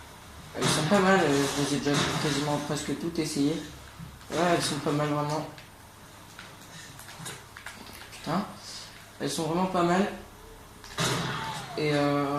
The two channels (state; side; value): identical; both; correlation 1.00